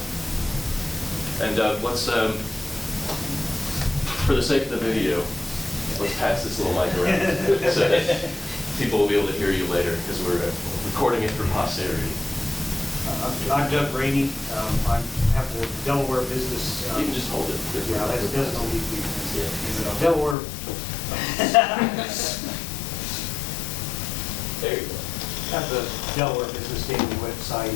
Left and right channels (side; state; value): right; drops out; at 20.4 s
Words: And let's, for the sake of the video, let's pass this little mic around so that people will be able to hear you later, because we're recording it for posterity. I'm Doug Rainey. I have the Delaware business. You can just hold it. Yeah, that doesn't leave me. Yeah. Delaware. There you go. I have the Delaware Business Daily website,